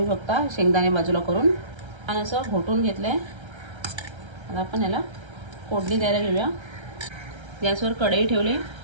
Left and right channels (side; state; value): left; late; 1.3 ms